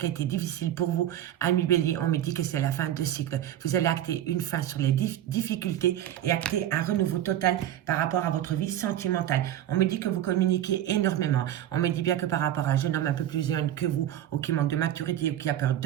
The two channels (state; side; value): quieter; left; 11.9 dB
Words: a été difficile pour vous, Ami Bélier, on me dit que c'est la fin de cycle. Vous allez acter une fin sur les difficultés et acter un renouveau total par rapport à votre vie sentimentale. On me dit que vous communiquez énormément. On me dit bien que par rapport à un jeune homme un peu plus jeune que vous ou qui manque de maturité ou qui a peur